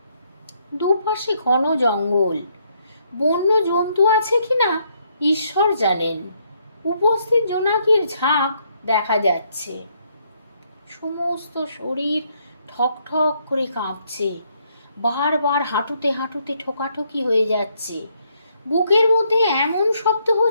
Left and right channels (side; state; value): both; inverted; correlation -0.72